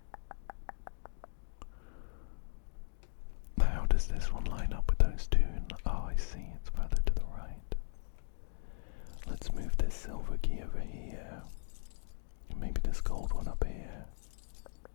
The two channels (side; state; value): right; silent; digital silence